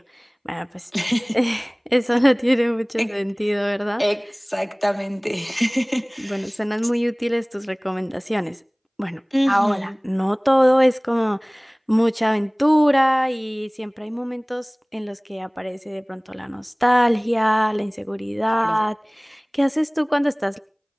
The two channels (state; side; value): identical; both; correlation 1.00